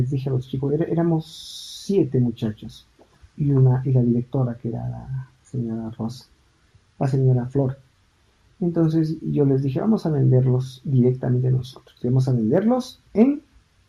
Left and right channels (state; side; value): identical; both; correlation 1.00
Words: dije a los chicos, éramos 7 muchachos y la directora, que era la señora Rosa, la señora Flor. Entonces yo les dije, vamos a venderlos directamente nosotros, vamos a venderlos en